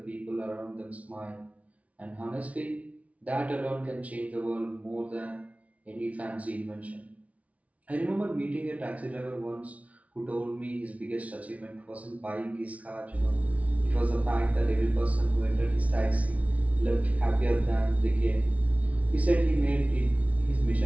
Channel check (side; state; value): left; late; 0.067 ms